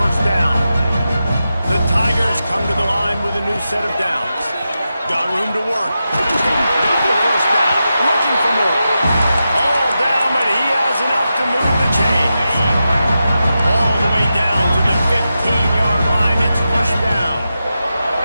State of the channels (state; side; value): inverted; both; correlation -0.90